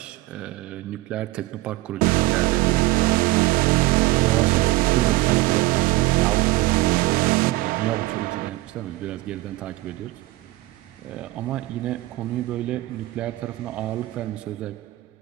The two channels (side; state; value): left; quieter; 19.6 dB